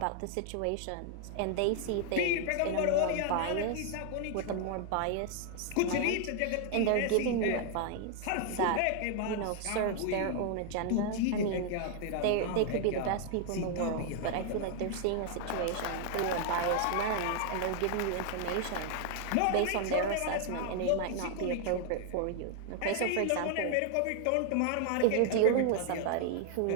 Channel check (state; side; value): different; both; correlation 0.00